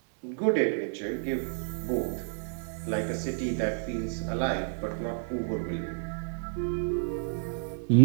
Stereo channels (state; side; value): silent; left; digital silence